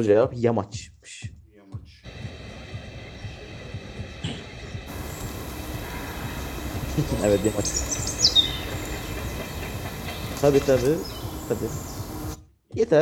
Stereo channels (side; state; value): both; identical; correlation 1.00